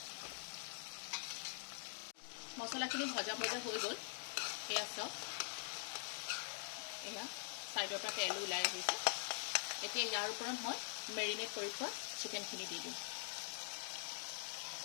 মছলাখিনি ভজা ভজা হৈ গ'ল। এয়া চাওক, এয়া ছাইডৰ পৰা তেল ওলাই আহিছে। এতিয়া ইয়াৰ ওপৰত মই মেৰিনেট কৰি থোৱা চিকেনখিনি দি দিম।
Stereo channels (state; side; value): silent; right; digital silence